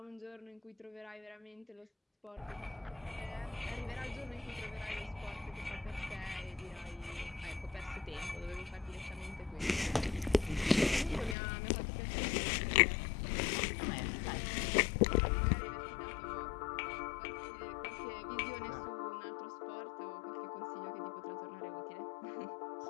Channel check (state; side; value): drops out; right; at 11.4 s